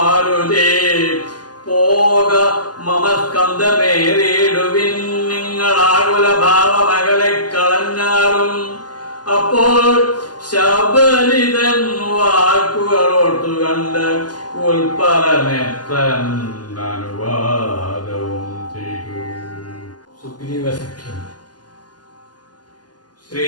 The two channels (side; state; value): right; late; 0.70 ms